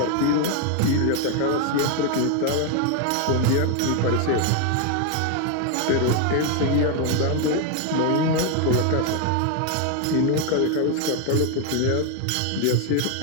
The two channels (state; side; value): different; both; correlation 0.01